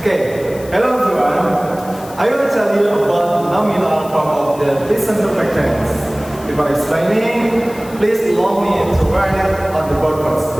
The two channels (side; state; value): left; noise; hiss, 20 dB below the sound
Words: Okay, hello everyone. I will tell you about the nominal form of the present perfect tense. Before explaining, please allow me to write it on the board first.